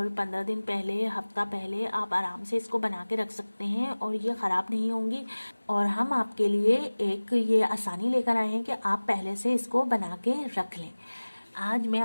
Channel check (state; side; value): inverted; both; correlation -1.00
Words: 15 दिन पहले, हफ्ता पहले आप आराम से इसको बना के रख सकते हैं और ये ख़राब नहीं होंगी। और हम आपके लिए एक ये आसानी लेकर आए हैं कि आप पहले से इसको बना के रख लें। आज मैं